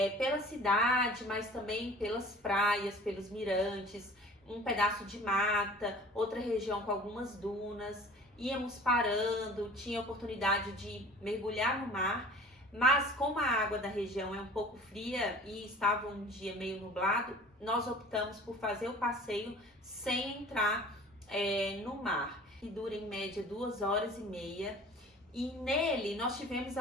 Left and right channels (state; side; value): normal; both; correlation 0.45